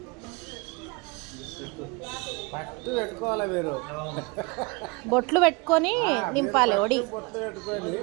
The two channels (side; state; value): left; quieter; 28.1 dB